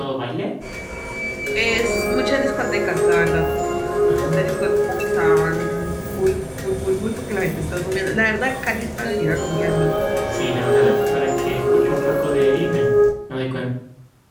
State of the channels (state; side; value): identical; both; correlation 1.00